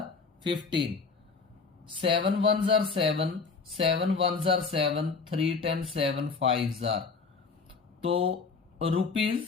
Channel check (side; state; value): right; quieter; 4.7 dB